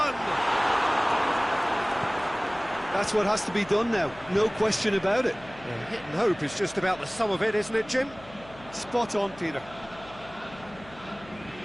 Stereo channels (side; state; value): left; noise; hum, 20 dB below the sound